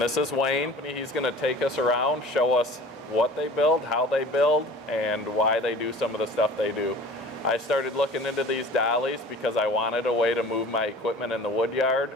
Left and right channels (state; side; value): normal; both; correlation 0.43